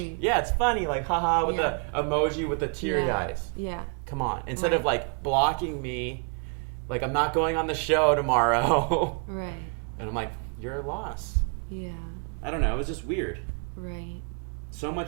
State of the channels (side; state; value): left; quieter; 38.2 dB